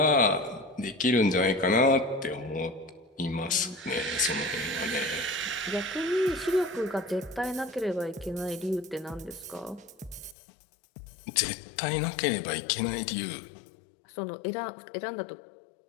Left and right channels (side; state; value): right; drops out; at 10.4 s